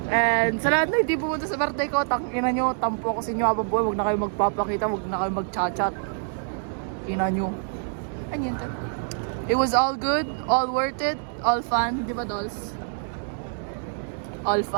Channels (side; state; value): left; silent; 61 dB below the other